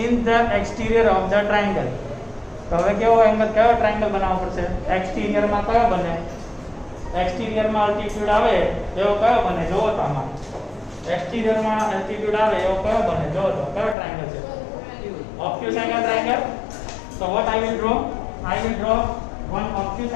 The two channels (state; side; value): drops out; right; at 14.0 s